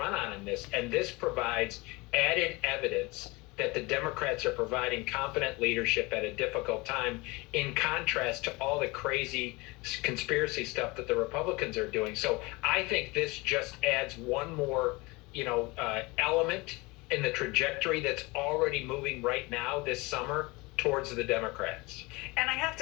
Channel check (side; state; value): right; quieter; 24.4 dB